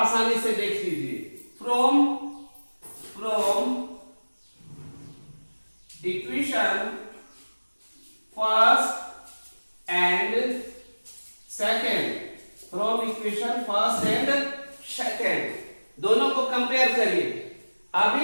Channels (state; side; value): inverted; both; correlation -1.00